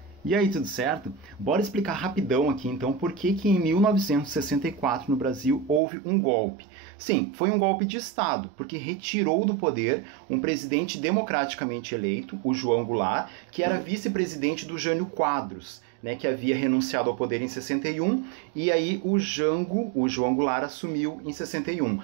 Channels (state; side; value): drops out; left; at 5.8 s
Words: E aí, tudo certo? Bora explicar rapidão aqui então por que em 1964 no Brasil houve um golpe. Sim, foi um golpe de Estado, porque retirou do poder um presidente democraticamente eleito, o João Goulart, que era vice-presidente do Jânio Quadros, né, que havia renunciado ao poder em 61, e aí o João Goulart, assumiu em 61.